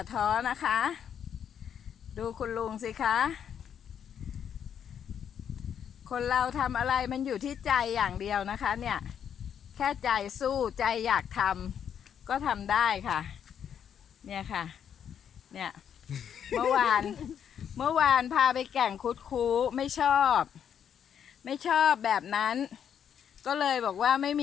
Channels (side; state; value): right; quieter; 8.5 dB